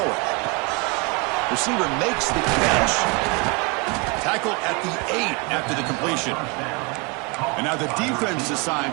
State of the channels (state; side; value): quieter; left; 30.4 dB